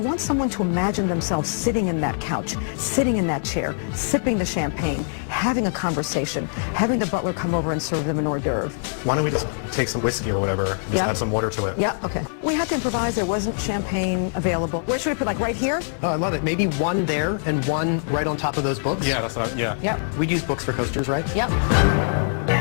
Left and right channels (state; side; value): silent; right; digital silence